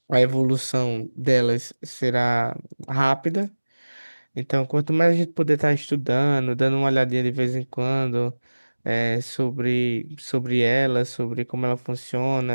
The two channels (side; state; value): both; inverted; correlation -1.00